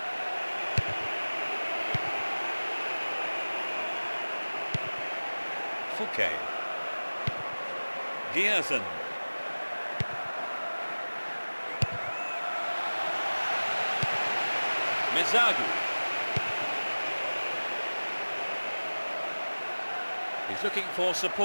Fouquet. Giersen. Mezagu. He's looking for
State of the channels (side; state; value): both; inverted; correlation -1.00